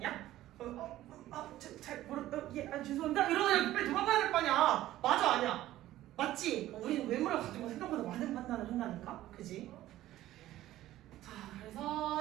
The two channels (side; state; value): left; quieter; 14.6 dB